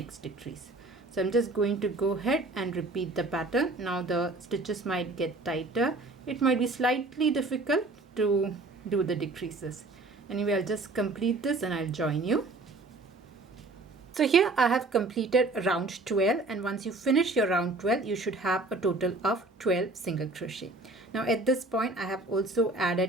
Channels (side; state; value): left; quieter; 3.1 dB